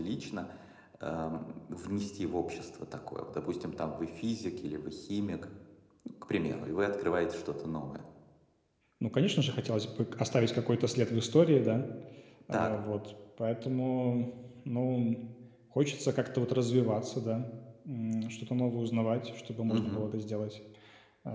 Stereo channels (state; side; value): identical; both; correlation 1.00